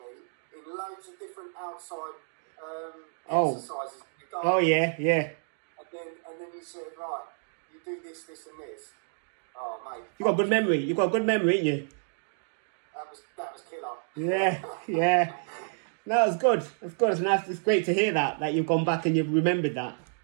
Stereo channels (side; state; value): left; silent; digital silence